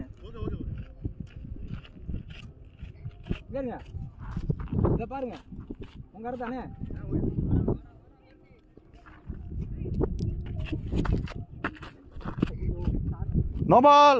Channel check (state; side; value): identical; both; correlation 1.00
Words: இத பாருங்க உங்க இடத்தானே. நோபால்